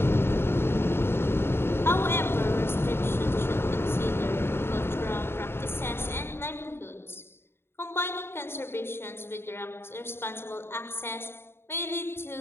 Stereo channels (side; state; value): right; late; 0.11 ms